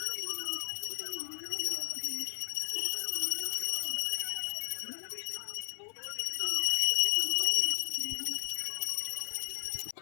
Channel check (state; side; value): silent; right; 55 dB below the other